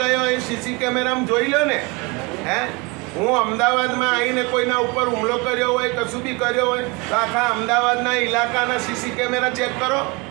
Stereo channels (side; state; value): left; quieter; 27.5 dB